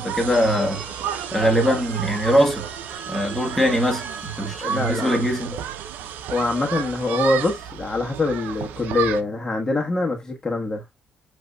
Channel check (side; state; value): both; normal; correlation 0.74